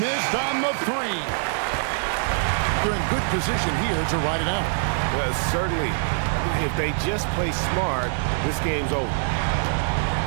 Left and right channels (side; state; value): left; silent; digital silence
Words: on the 3. They're in good position here to ride it out. Certainly. If they just play smart, this game's over.